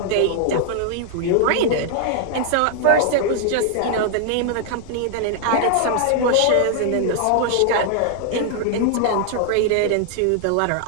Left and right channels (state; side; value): different; both; correlation 0.00